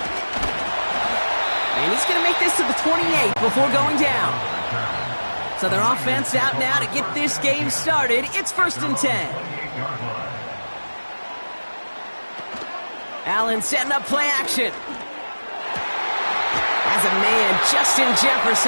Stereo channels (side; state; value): both; inverted; correlation -1.00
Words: And he's going to make this to the 28 before going down. So their offense out now to get this game started. It's 1st and 10. Allen setting up play action. As a man, Justin